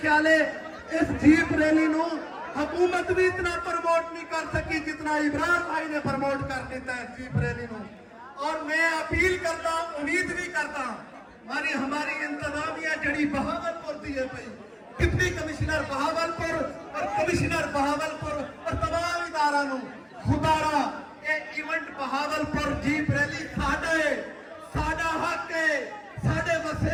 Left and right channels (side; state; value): both; identical; correlation 1.00